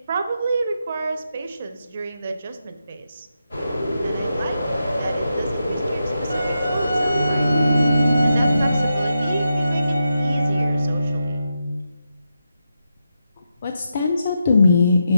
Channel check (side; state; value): both; inverted; correlation -0.86